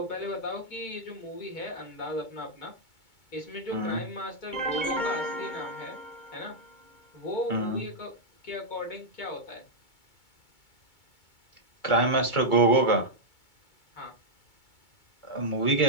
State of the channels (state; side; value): late; right; 2.2 ms